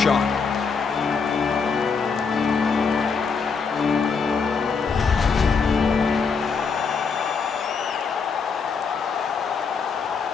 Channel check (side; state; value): right; quieter; 5.4 dB